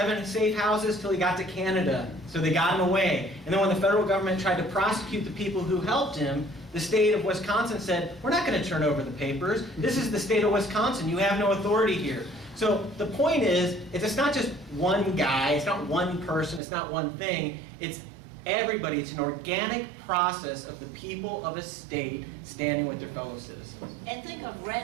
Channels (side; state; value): left; drops out; at 16.6 s